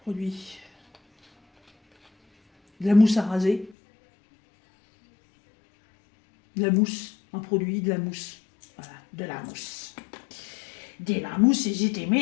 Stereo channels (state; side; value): drops out; right; at 3.8 s